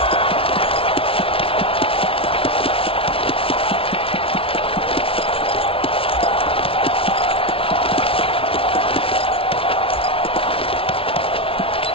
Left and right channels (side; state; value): right; late; 0.26 ms